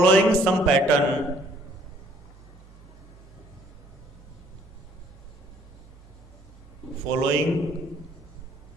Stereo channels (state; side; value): normal; both; correlation 0.61